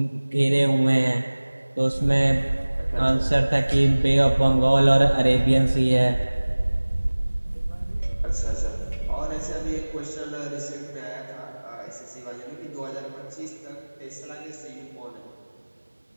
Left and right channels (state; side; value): inverted; both; correlation -1.00